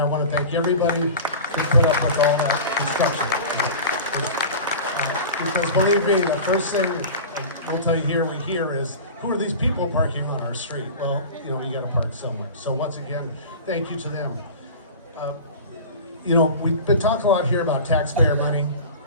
want to thank everybody who put up with all that construction. Because believe me, the first thing we'll tell you here, we hear is, who are these people parking on our street? Well, you gotta park somewhere. So once again, thank you to them. We've been talking a lot here about taxpayer money.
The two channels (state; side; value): inverted; both; correlation -0.35